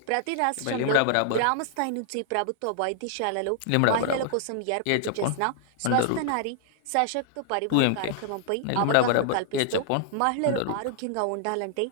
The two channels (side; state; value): both; different; correlation -0.01